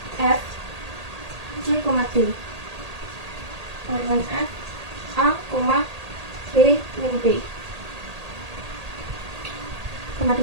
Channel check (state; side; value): late; left; 1.8 ms